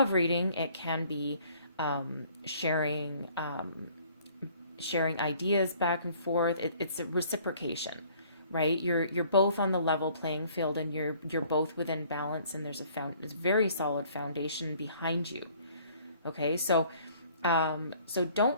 reading, it can be sharing ideas back and forth. It's a reciprocation, right? You're both on the level playing field, and you're both within balance, and there's a very solid foundation behind you. Okay, so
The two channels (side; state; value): both; inverted; correlation -0.57